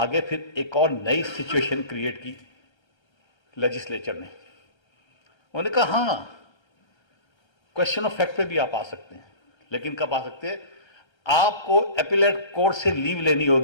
फिर एक और नई सिचुएशन क्रिएट की लेजिस्लेचर ने। उन्होंने कहा हां क्वेश्चन ऑफ फैक्ट पे भी आप आ सकते हैं, लेकिन कब आ सकते हैं? आपको एपिलेट कोर्ट से लीव लेनी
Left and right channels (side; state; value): right; late; 1.3 ms